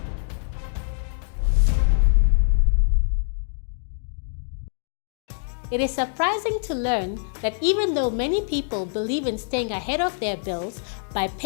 It is surprising to learn that even though many people believe in staying ahead of their bills by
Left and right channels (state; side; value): silent; right; digital silence